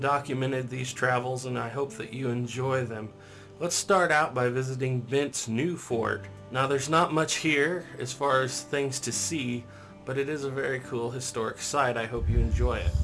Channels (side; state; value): both; identical; correlation 1.00